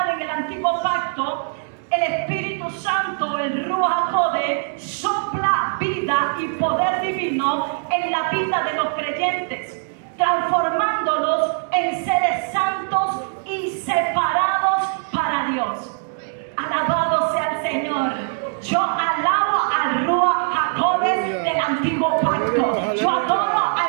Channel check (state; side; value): silent; left; 64 dB below the other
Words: en el antiguo pacto, el Espíritu Santo, el Ruach HaKodesh, sopla vida y poder divino en la vida de los creyentes, transformándolos en seres santos y separados para Dios. Alabado sea el Señor. Yo alabo al Ruach HaKodesh del antiguo pacto. Yo adoro